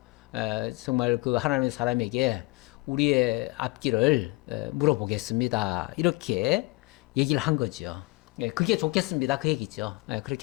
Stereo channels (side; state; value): right; quieter; 24.6 dB